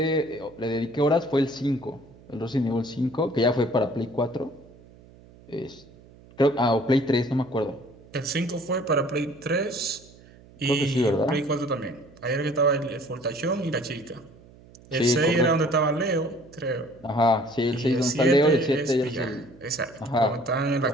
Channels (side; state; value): right; noise; hum, 24 dB below the sound